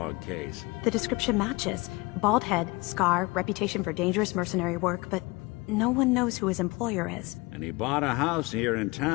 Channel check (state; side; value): quieter; right; 24.4 dB